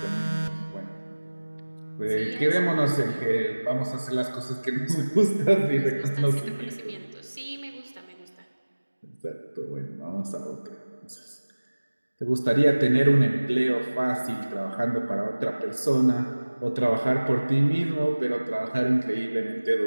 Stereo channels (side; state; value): both; inverted; correlation -1.00